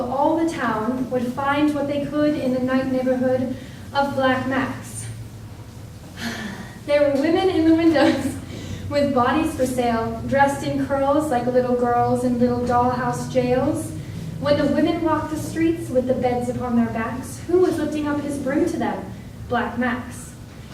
all the town would find what they could in the night neighborhood of Black Max. There were women in the windows with bodies for sale, dressed in curls like little girls in little dollhouse jails. When the women walked the streets with the beds upon their backs, who was lifting up his broom to them? Black Max.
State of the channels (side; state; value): both; identical; correlation 1.00